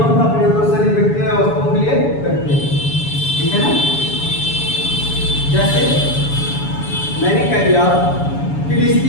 का प्रयोग दो से अधिक व्यक्तियों या वस्तुओं के लिए करते हैं। ठीक है ना। जैसे मैंने कह दिया कि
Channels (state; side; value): late; right; 7.1 ms